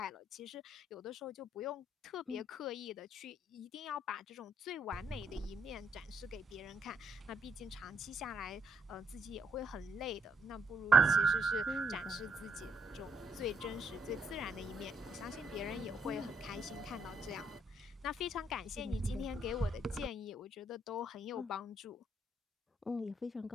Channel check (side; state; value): both; normal; correlation 0.74